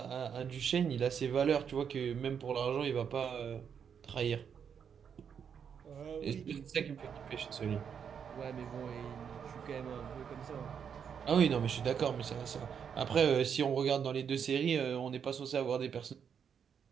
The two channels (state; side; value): quieter; left; 7.4 dB